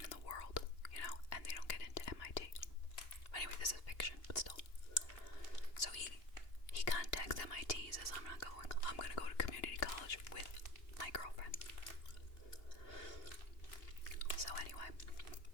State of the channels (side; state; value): right; late; 2.8 ms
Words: in the world, and they don't get into MIT. Anyway, this is fiction, but still. So he contacts MIT, he says, I'm not going. I'm going to go to community college with my girlfriend. So anyway,